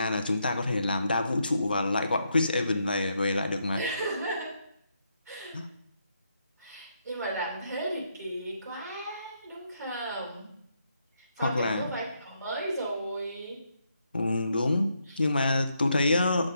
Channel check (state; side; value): inverted; both; correlation -0.78